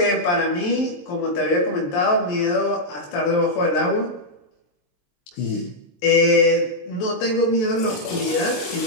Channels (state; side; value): late; right; 23 ms